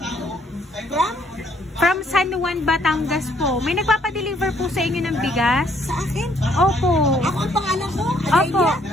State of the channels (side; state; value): both; normal; correlation 0.66